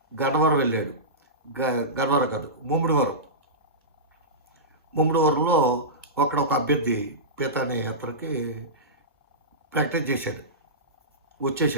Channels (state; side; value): normal; both; correlation -0.17